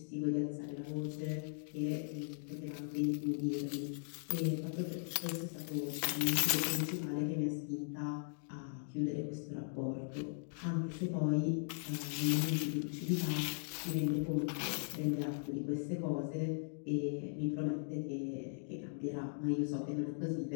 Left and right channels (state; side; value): silent; right; digital silence